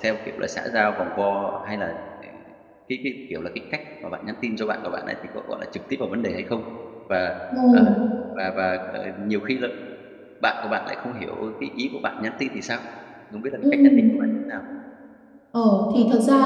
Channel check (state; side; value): identical; both; correlation 1.00